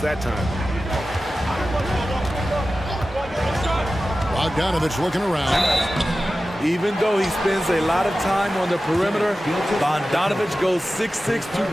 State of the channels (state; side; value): normal; both; correlation 0.94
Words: that time. Bogdanovich looking around. Even though he spends a lot of time on the perimeter, Bogdanovich goes 6'6",